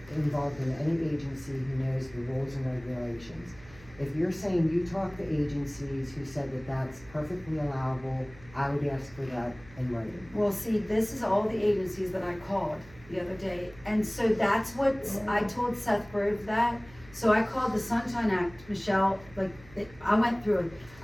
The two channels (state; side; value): noise; right; hum, 22 dB below the sound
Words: involved in any agency who knows the rules and regulations. If you're saying you talked to agencies who said that that's perfectly allowable, I would ask for that in writing. Well, see, this is all the agencies that I called, the other day, and so that's what I told Seth Grove that. So I called the Sunshine Act, Michelle, I went through it.